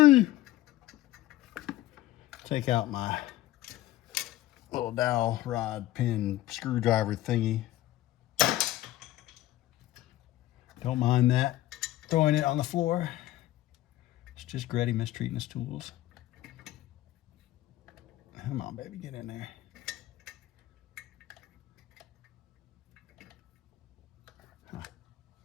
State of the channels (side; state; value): right; quieter; 15.2 dB